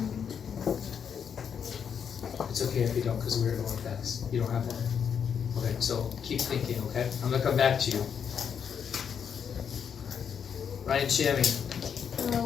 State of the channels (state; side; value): quieter; right; 7.5 dB